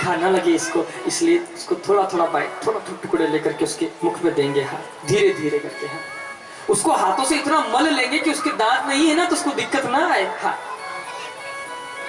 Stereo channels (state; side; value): identical; both; correlation 1.00